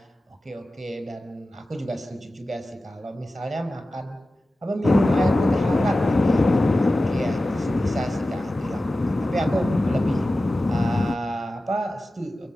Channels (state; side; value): normal; both; correlation 0.95